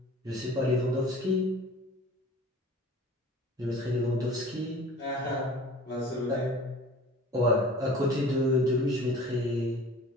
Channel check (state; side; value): normal; both; correlation 0.43